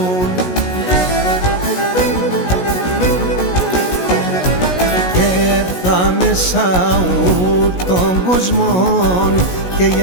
Και έρθα μέσα των κοσμών και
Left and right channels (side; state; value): right; late; 16 ms